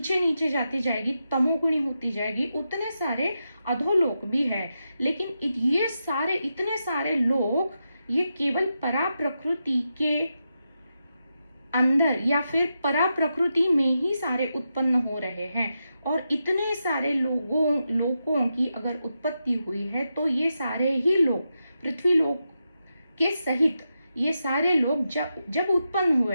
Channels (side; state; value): both; inverted; correlation -0.87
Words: नीचे जाती जाएगी, तमोगुणी होती जाएगी, उतने सारे अधोलोक भी है। लेकिन ये सारे इतने सारे लोक ये केवल परा प्रकृति के अंदर या फिर परा प्रकृति में ही सारे उत्पन्न हो रहे हैं। और इतने सारे लोगों की अगर उत्पत्ति हुई है तो ये सारे ही लोग, पृथ्वी लोक के सहित ये सारे लोग जब जब उत्पन्न